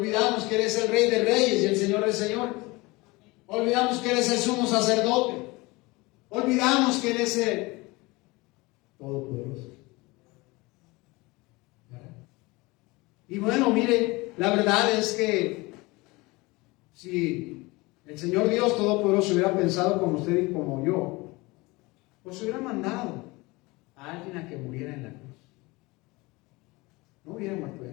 que eres el Rey de Reyes y el Señor de Señores. Olvidamos que eres el sumo sacerdote. Olvidamos que eres el Todopoderoso. Y bueno, mire, la verdad es que si el Señor Dios Todopoderoso hubiera pensado como usted y como yo, pues hubiera mandado a alguien a que muriera en la cruz. No hubiera muerto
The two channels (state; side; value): quieter; right; 23.3 dB